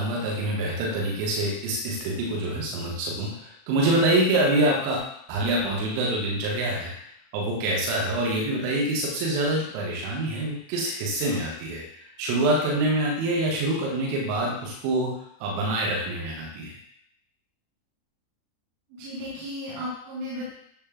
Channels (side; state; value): left; late; 37 ms